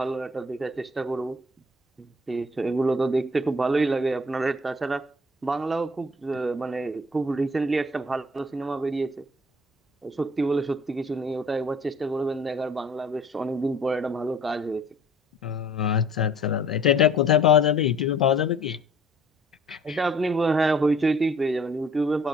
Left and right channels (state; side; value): normal; both; correlation 0.54